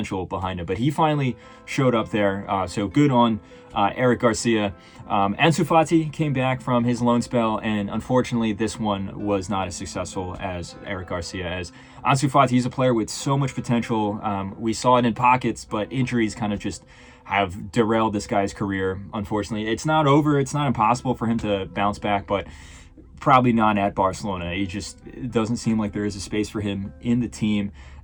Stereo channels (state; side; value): identical; both; correlation 1.00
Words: behind him, but he finally showed up there. So good on Eric Garcia. Ansu Fati came back from his loan spell, and unfortunately this one was not as successful as Eric Garcia. As Ansu Fati, he's a player with so much potential. We saw it in pockets, but injuries kind of just have derailed this guy's career. Unfortunately, it's not over. It's not impossible for him to bounce back, but probably not at Barcelona. It doesn't seem like there is a space for him in the team,